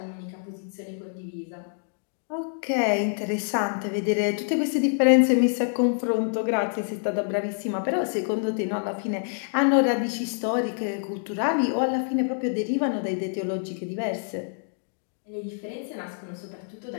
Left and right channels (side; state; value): right; silent; digital silence